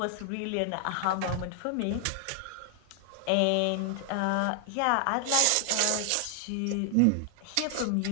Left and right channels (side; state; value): both; different; correlation 0.00